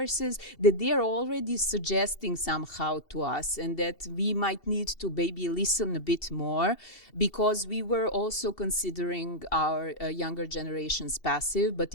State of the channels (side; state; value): right; late; 2.7 ms